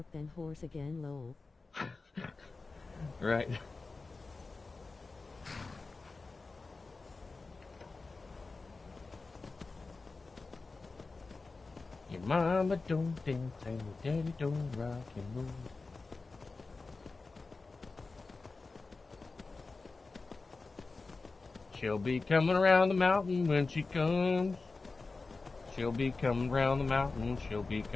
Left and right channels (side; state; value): right; quieter; 3.8 dB